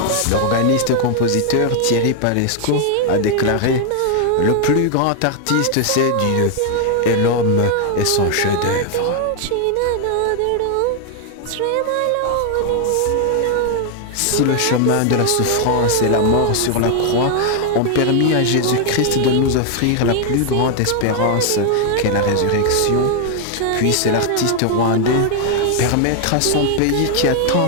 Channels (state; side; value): different; both; correlation 0.00